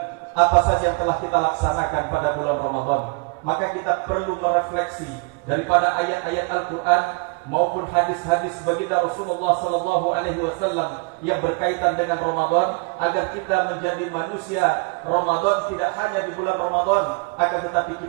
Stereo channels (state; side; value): quieter; left; 30.9 dB